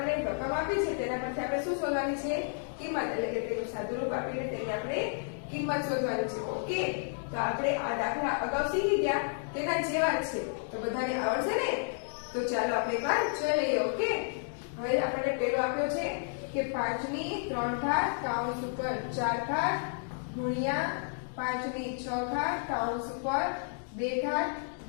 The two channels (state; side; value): silent; right; 57 dB below the other